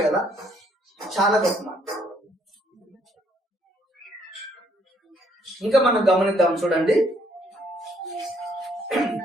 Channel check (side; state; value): both; normal; correlation 0.68